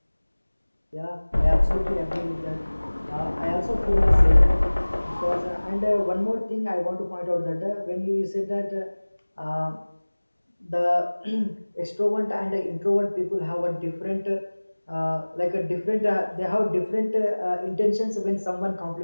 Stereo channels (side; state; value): both; inverted; correlation -1.00